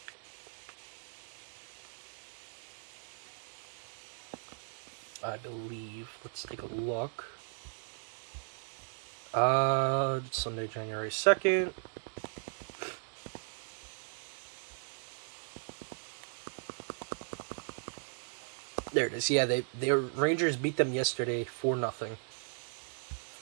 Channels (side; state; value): left; silent; digital silence